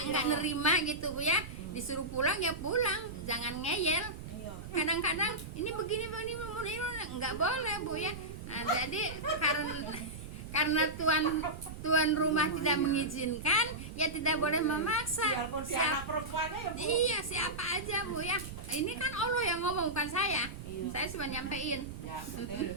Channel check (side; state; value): right; noise; rumble, 11 dB below the sound